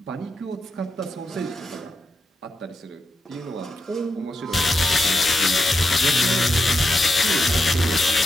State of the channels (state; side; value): normal; both; correlation 0.85